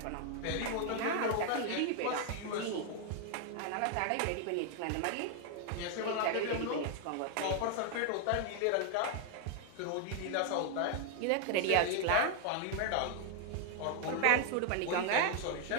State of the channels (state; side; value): different; both; correlation 0.00